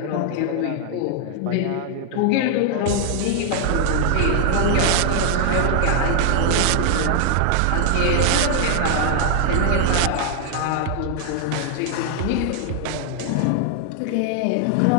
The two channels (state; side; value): different; both; correlation 0.00